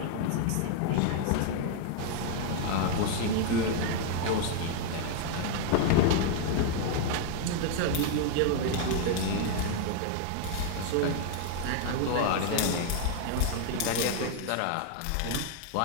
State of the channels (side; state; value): both; different; correlation 0.00